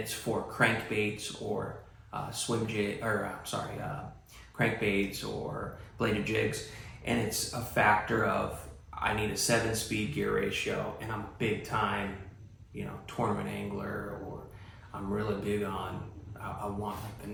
for crankbaits or crankbaits or bladed jigs, and it's a factor of I need a 7-speed gear ratio, and I'm a big time, tournament angler, or I'm really big on, I want like the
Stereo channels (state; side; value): identical; both; correlation 1.00